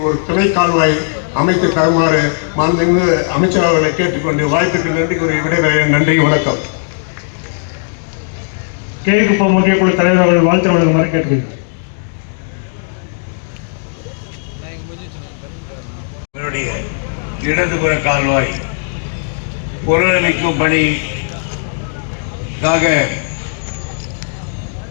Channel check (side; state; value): right; silent; digital silence